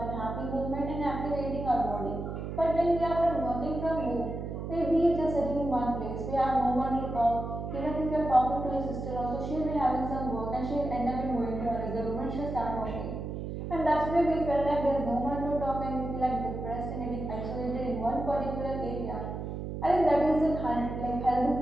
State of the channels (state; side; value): noise; right; hum, 6 dB below the sound